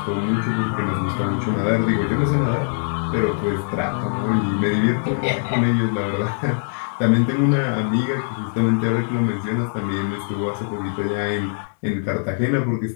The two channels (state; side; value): silent; right; digital silence